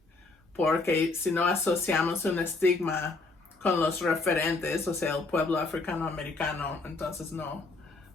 porque si no asociamos un estigma con los referentes, o sea, el pueblo africano-americano, entonces no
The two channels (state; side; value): quieter; right; 3.5 dB